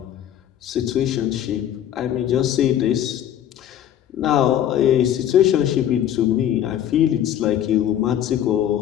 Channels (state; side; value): quieter; right; 10.8 dB